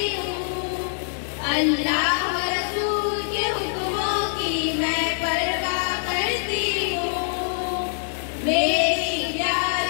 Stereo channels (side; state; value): right; silent; digital silence